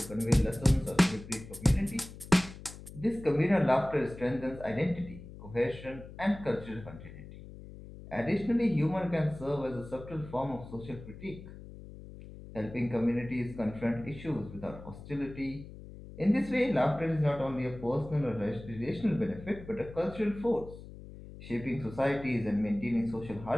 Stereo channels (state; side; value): noise; left; hum, 15 dB below the sound